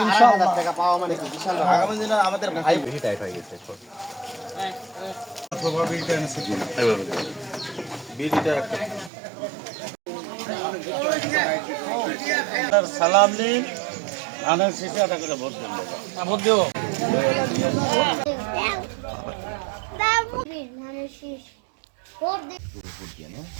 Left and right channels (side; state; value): left; drops out; at 9.1 s